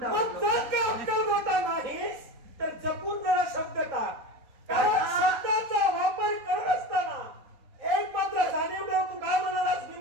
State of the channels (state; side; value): late; left; 3.9 ms